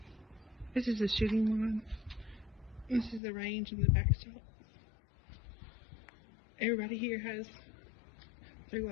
This is the shooting one. This is the range and the backstop. Everybody here has their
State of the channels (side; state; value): right; drops out; at 3.2 s